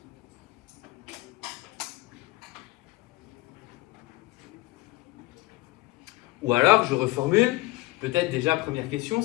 Ou alors, je reformule, peut-être déjà, première question,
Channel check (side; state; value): right; quieter; 19.2 dB